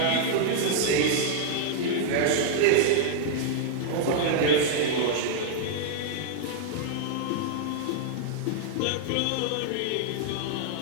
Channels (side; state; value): both; different; correlation -0.01